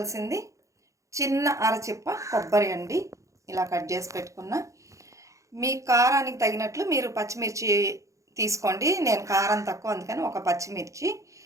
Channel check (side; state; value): left; late; 0.15 ms